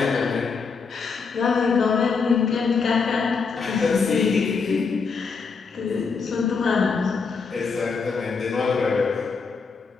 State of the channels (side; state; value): right; quieter; 5.1 dB